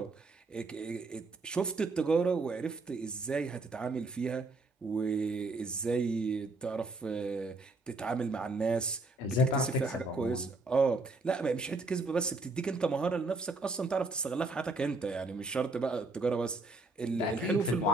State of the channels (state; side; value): quieter; left; 3.1 dB